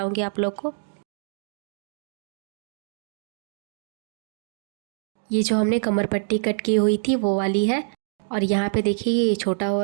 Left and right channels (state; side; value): silent; left; digital silence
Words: आप लोग को। ये जो हमने कमर पट्टी कट की हुई थी वो वाली है और यहाँ पे देखिए ये छोटा हो